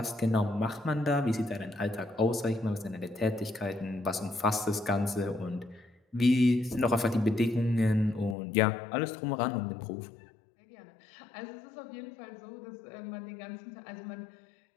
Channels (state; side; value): drops out; right; at 8.3 s